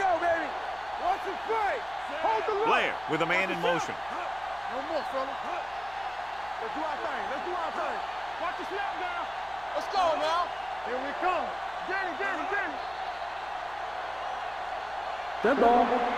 baby. Watch the play. Hold the look. Blair with a man in motion. No more, fella. Let's do our thing. Let's do our thing. Watch the snap now. Let's go now. Here we come. Get it. Dead ball.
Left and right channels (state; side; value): noise; left; hum, 24 dB below the sound